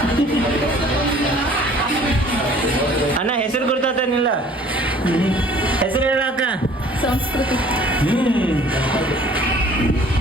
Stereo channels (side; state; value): both; normal; correlation 0.52